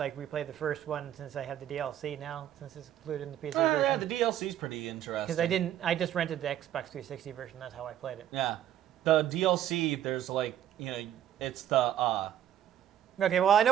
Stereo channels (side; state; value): left; quieter; 11.2 dB